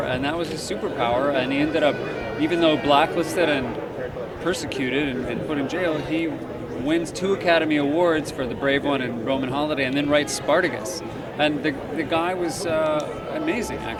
that was his superpower, and he ended up, even though blacklisted and persecuted and put in jail, he wins 2 Academy Awards for The Brave One and Roman Holiday, and then writes Spartacus. And the guy was amazing,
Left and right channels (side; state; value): both; identical; correlation 1.00